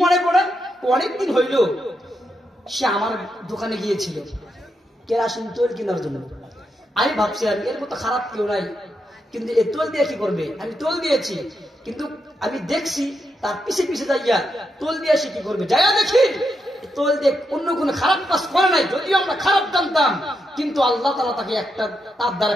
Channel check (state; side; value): normal; both; correlation 0.83